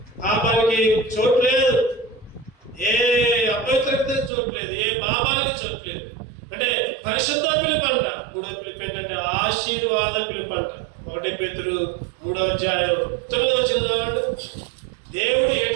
పాపానికి చోటు లేదు, ఏ అపవిత్రత చోటు లేదు, ఏ పాపానికి చోటు లేదు. అంటే పరిశుద్ధ పిలుపు అంట. 3వ పిలుపు ఏంటంటే ఆశీర్వాద పిలుపు అంట. 1 పేతురు 3వ అధ్యాయం 9వ వచనం. దేవుడు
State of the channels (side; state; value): left; drops out; at 4.3 s